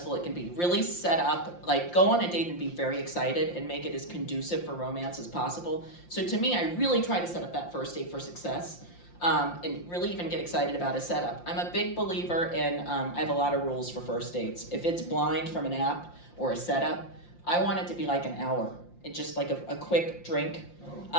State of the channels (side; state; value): right; late; 5.7 ms